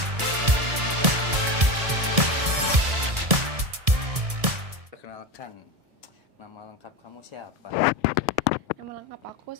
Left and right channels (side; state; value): left; late; 1.6 ms